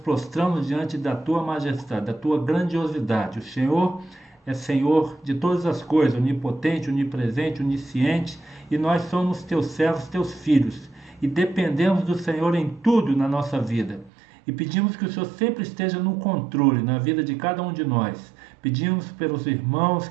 diante da Tua majestade, da Tua grandiosidade. O Senhor é Senhor de todas as coisas, onipotente, onipresente, onisciente, e nós somos Teus servos, Teus filhos, e dependemos do Senhor em tudo na nossa vida. E pedimos que o Senhor sempre esteja no controle na vida de cada um de nós. Pedimos pelos irmãos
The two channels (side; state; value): left; drops out; at 14.1 s